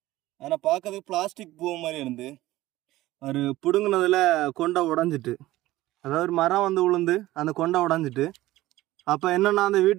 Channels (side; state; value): left; quieter; 16.7 dB